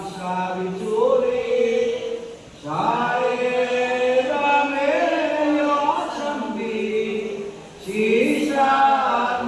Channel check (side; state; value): both; identical; correlation 1.00